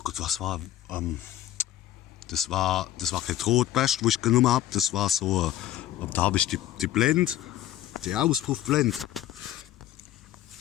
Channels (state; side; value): quieter; right; 13.0 dB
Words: Gott, was war? Das war kein Rotbest, wo ich genommen habe. Das war so, da habe ich die Blende, die Auspuffblende.